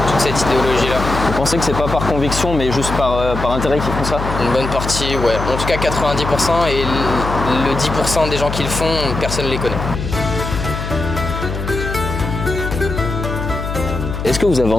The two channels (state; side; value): noise; left; hum, 5 dB below the sound